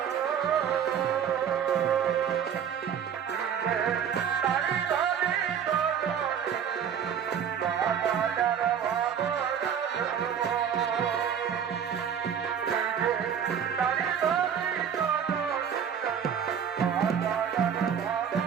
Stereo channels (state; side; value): quieter; left; 8.1 dB